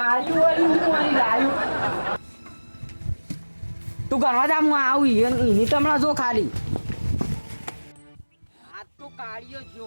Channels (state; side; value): inverted; both; correlation -1.00